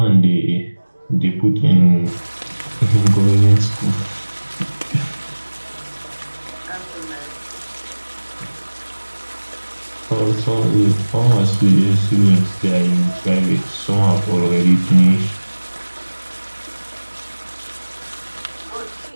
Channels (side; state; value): both; inverted; correlation -1.00